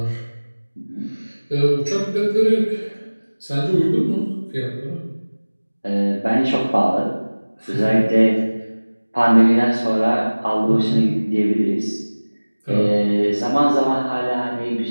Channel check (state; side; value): inverted; both; correlation -1.00